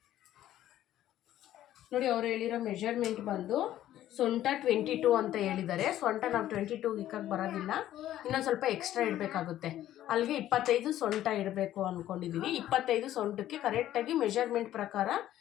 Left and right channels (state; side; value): quieter; right; 12.8 dB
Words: ನೋಡಿ ಅವ್ರು ಹೇಳಿರೋ ಮೆಜರ್ಮೆಂಟ್ ಬಂದು ಸೊಂಟ 22 ಅಂತ ಹೇಳಿದ್ದಾರೆ. ಸೊಂಟ ನಾವು 22 ಇಕ್ಕಕ್ಕೆ ಬರೋದಿಲ್ಲ, ಇನ್ನೊಂದು ಸ್ವಲ್ಪ ಎಕ್ಸ್ಟ್ರಾ ಇಡಬೇಕಾಗುತ್ತೆ. ಅಲ್ಲಿಗೆ 25 ಸೊಂಟ ಇಡಬೇಕು ಅಂದ್ಕೊಂಡಿದ್ದೀವಿ. 25 ಸೊಂಟಕ್ಕೆ ಕರೆಕ್ಟಾಗಿ ಮೆಜರ್ಮೆಂಟ್ ಪ್ರಕಾರ